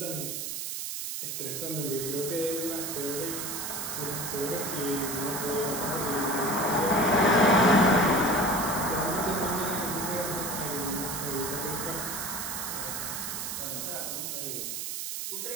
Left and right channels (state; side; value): noise; right; hiss, 4 dB below the sound